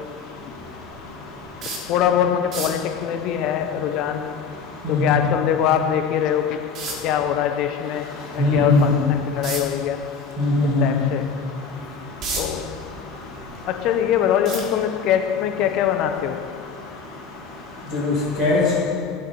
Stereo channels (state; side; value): quieter; right; 6.0 dB